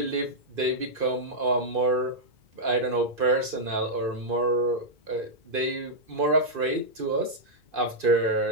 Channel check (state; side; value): late; left; 2.5 ms